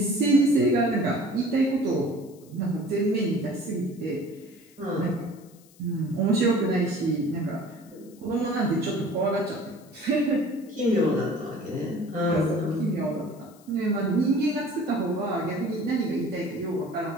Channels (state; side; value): noise; left; hiss, 27 dB below the sound